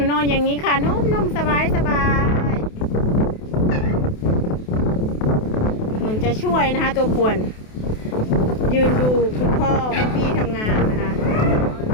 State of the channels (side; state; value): right; late; 28 ms